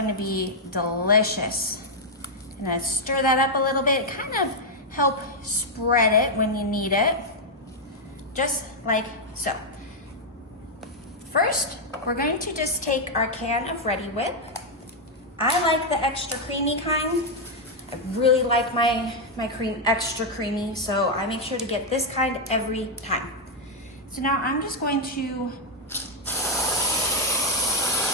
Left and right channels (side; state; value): both; normal; correlation -0.01